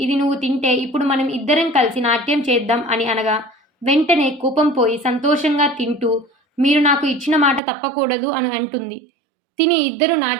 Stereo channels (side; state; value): left; drops out; at 7.6 s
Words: ఇది నువ్వు తింటే ఇప్పుడు మనం ఇద్దరం కలిసి నాట్యం చేద్దాం అని అనగా వెంటనే కోపం పోయి సంతోషంగా తింటూ మీరు నాకు ఇచ్చిన మాట తప్పకూడదు అని అంటుంది. తిని ఇద్దరు